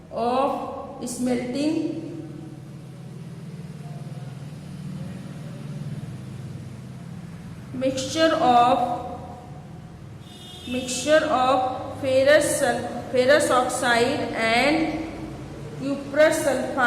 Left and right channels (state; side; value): identical; both; correlation 1.00